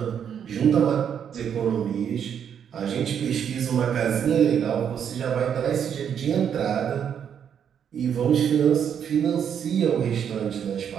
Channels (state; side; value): quieter; left; 8.3 dB